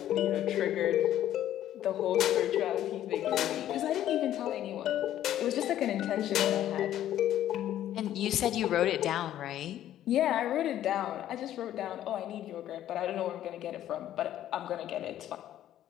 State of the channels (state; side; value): quieter; right; 12.1 dB